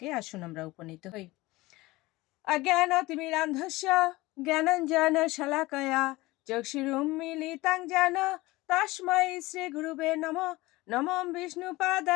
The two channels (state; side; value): quieter; right; 20.1 dB